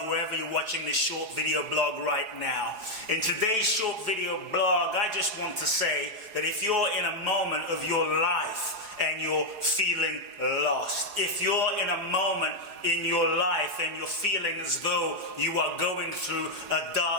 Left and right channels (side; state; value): left; late; 4.8 ms